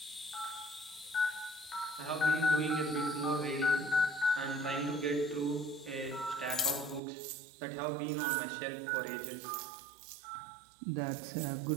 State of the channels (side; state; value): left; drops out; at 7.0 s